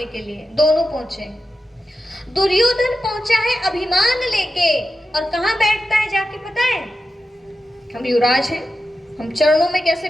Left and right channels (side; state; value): both; normal; correlation 0.90